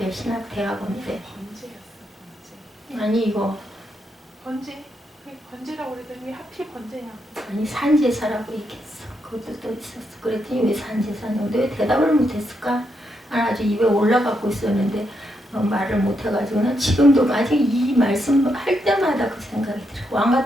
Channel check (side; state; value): both; normal; correlation 0.80